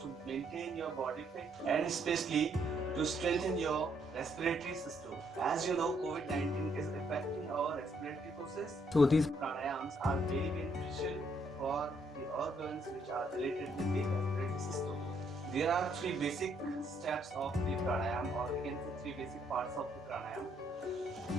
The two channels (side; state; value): both; normal; correlation 0.71